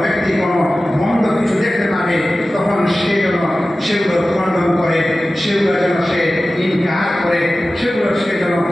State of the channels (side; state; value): both; normal; correlation 0.95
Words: ব্যক্তি কোনো মন্দ কিছু দেখতে পাবে, তখন সেগুলো খণ্ডন করে, সেগুলো যেন সে ইনকার করে, সেগুলো সে যেন